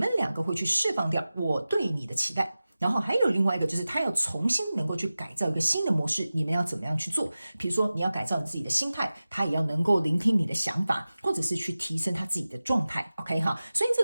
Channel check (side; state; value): both; inverted; correlation -0.96